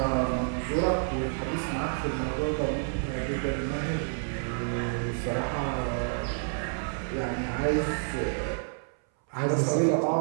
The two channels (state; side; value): silent; left; 59 dB below the other